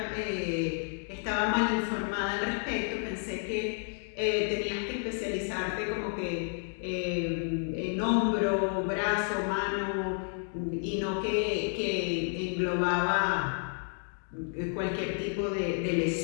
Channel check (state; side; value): silent; right; 57 dB below the other